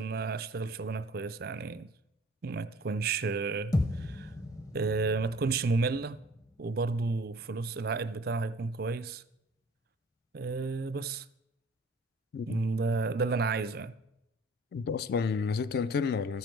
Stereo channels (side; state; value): both; normal; correlation 0.50